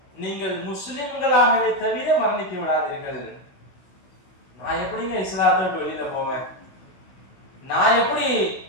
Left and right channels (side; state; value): right; late; 16 ms